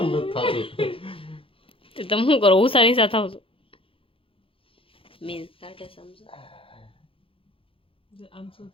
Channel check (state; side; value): late; right; 0.26 ms